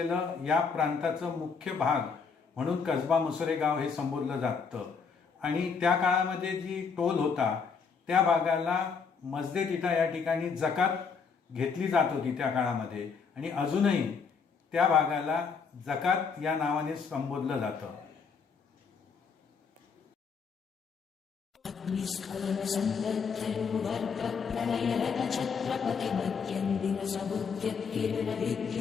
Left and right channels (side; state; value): right; quieter; 5.7 dB